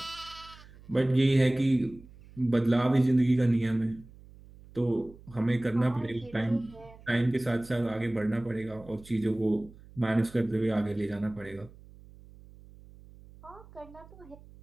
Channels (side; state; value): right; noise; hum, 22 dB below the sound